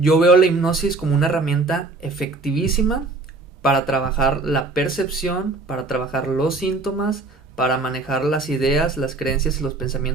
veo la hipnosis como una herramienta efectivísima para trabajar la percepción, para trabajar los síntomas, para manejar las ideas, las creencias y los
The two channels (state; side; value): quieter; left; 3.5 dB